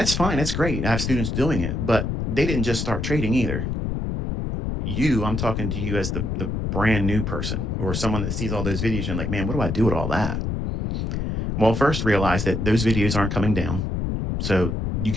fine. That's great. I have students doing it, but they didn't just start trading either. I'm talking to you as the brand new person or someone that sees all those videos and like, man, what do I do with all that? Well, first realize that those videos aren't coming down. So you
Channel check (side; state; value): left; noise; rumble, 2 dB below the sound